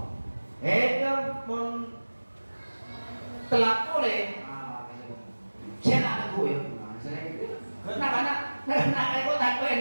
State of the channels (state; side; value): inverted; both; correlation -1.00